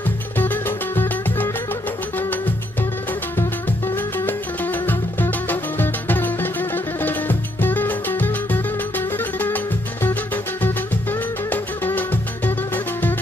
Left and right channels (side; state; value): both; normal; correlation 0.73